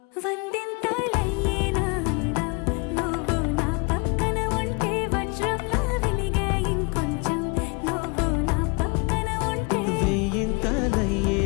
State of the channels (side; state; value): right; quieter; 31.1 dB